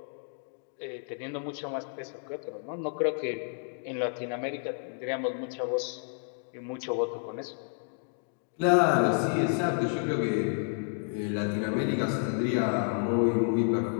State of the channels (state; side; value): silent; right; 57 dB below the other